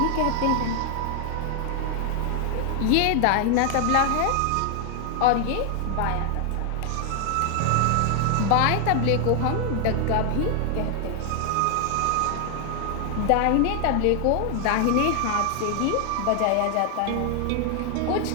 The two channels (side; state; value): both; different; correlation 0.00